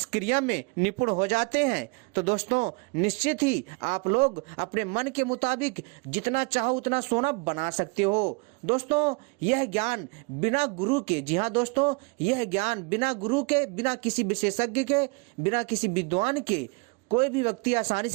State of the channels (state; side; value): quieter; left; 30.6 dB